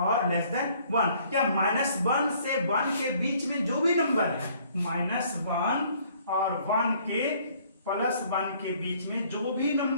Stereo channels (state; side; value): inverted; both; correlation -0.60